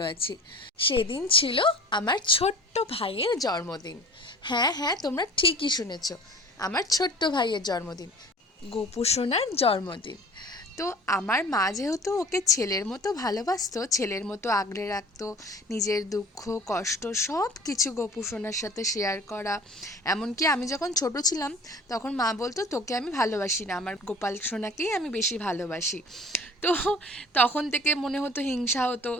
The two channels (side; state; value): both; normal; correlation 0.44